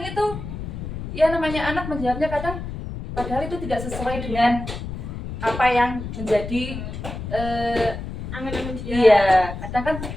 itu ya namanya anak menjawabnya kadang padahal itu tidak sesuai dengan apa yang menjadi angan-angan dia. Iya, kadang kan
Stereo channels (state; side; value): noise; left; rumble, 8 dB below the sound